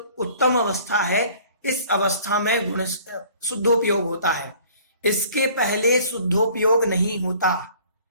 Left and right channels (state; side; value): inverted; both; correlation -0.52